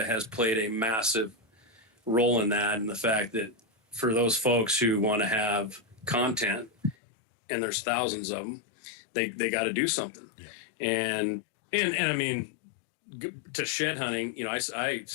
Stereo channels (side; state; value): right; drops out; at 7.0 s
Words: has played a massive role in that, and the fact that for those folks who want to have content, and there's thousands of them, they got to do something. Yeah. And I mean, to shed hunting, I